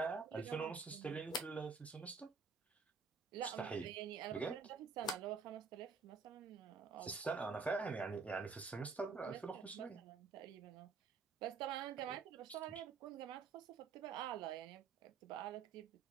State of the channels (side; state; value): left; quieter; 4.9 dB